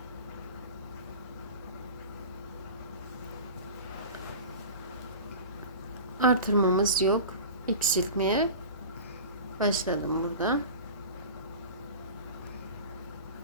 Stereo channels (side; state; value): both; inverted; correlation -0.35